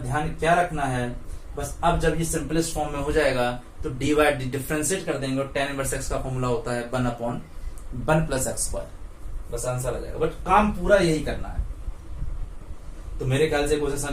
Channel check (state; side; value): identical; both; correlation 1.00